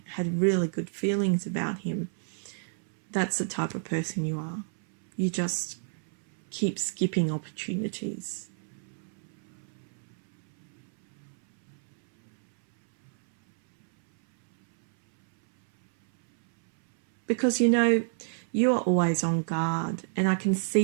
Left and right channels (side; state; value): left; silent; 59 dB below the other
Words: had really good feelings about him. That's the type of person you are. You just keep skipping opportunities. Because, you know, you are always on guard, and I can